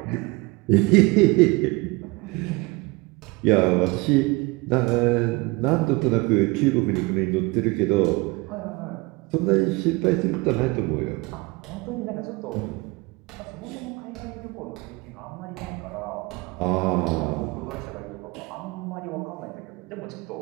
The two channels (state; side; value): quieter; left; 25.1 dB